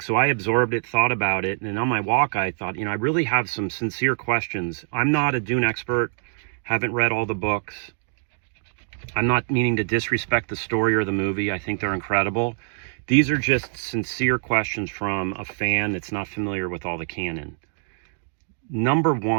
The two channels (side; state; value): left; silent; digital silence